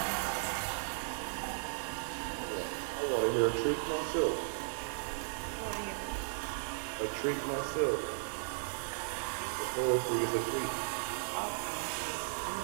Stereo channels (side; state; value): left; silent; digital silence